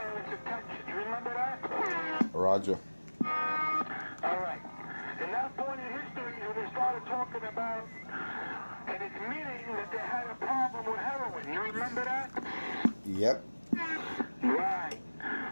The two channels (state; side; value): inverted; both; correlation -1.00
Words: attention. You remember that? Roger. All right. And that point in history, when they started talking about and admitting that they had a problem with heroin. You remember that? Yep. Right.